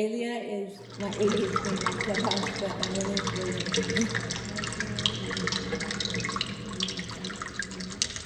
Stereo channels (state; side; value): identical; both; correlation 1.00